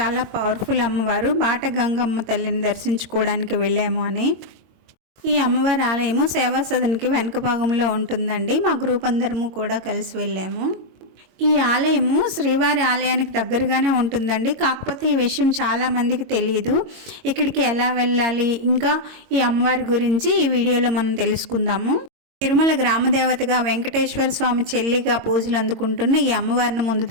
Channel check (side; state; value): left; late; 22 ms